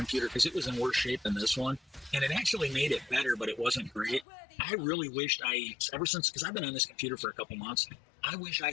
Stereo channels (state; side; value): drops out; right; at 4.2 s